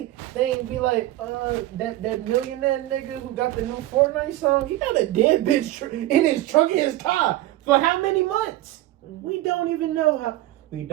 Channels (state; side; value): quieter; left; 15.8 dB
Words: they ain't be like, that millionaire nigga who got the new Fortnite song, he got a dead bitch in his trunk in his car for how many months? We don't even know how. We